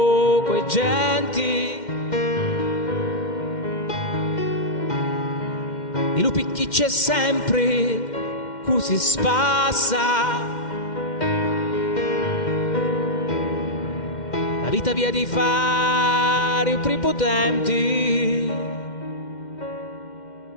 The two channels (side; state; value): right; late; 2.1 ms